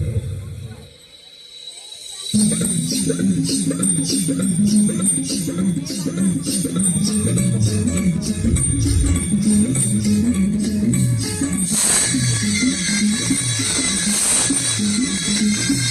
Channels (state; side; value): identical; both; correlation 1.00